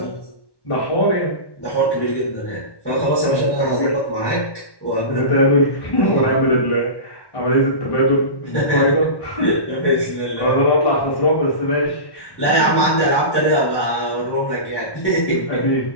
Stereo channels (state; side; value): late; right; 1.1 ms